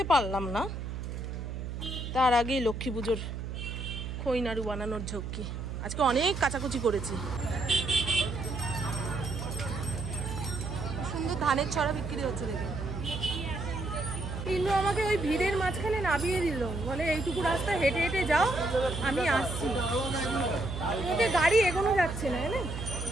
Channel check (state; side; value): noise; right; hum, 6 dB below the sound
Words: পারলাম না, তার আগেই লক্ষ্মী পুজোর খই নাড়ু বানানোর ঝক্কি। আজকে অনেক কাচাকুচি করেছি। সুন্দর ধানের ছড়া বিক্রি হচ্ছে দেখে। কিন্তু আমাকে ওই ভিড়ের মাঝখানে নামিয়ে দিল, বলে এইটুকু রাস্তা হেঁটে হেঁটে যাও, আমি আসছি। ওকে গাড়ি এগোনো যাচ্ছে না, না?